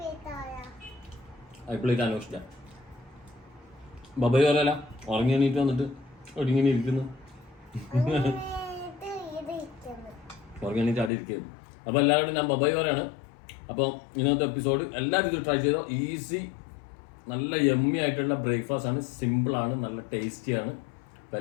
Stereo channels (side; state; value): right; drops out; at 11.1 s